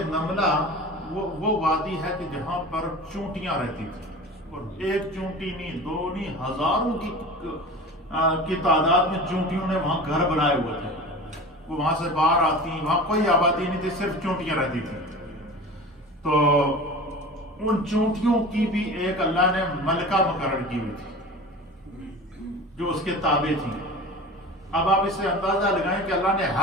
نملہ، وہ وادی ہے کہ جہاں پر چونٹیاں رہتی تھیں، اور ایک چونٹی نہیں، 2 نہیں، ہزاروں کی کی تعداد میں چونٹیوں نے وہاں گھر بنائے ہوئے تھے. وہ وہاں سے باہر آتی، وہاں کوئی آبادی نہیں تھی، صرف چونٹیاں رہتی تھیں. تو ان چونٹیوں کی بھی ایک اللہ نے ملکہ مقرر کی ہوئی تھی جو اس کے تابع تھی. اب آپ اس سے اندازہ لگائیں کہ اللہ نے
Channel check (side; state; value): both; normal; correlation 0.35